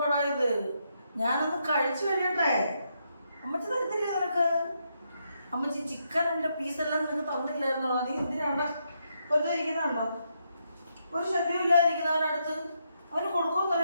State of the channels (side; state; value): both; inverted; correlation -0.79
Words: ഇത്? ഞാനൊന്ന് കഴിച്ചു കഴിയട്ടെ. അമ്മച്ചി തരത്തില്ലേ നിനക്ക്? അമ്മച്ചി ചിക്കനിൻ്റെ പീസെല്ലാം നിനക്ക് തന്നില്ലായിരുന്നോ? നീ എന്തിനാണ് വെറുതെ ഇരിക്കുന്നുണ്ടോ? ഒരു ശല്യം ഇല്ലാതിരിക്കുന്നവനടുത്ത് അവന് കൊടുക്കുമെന്ന്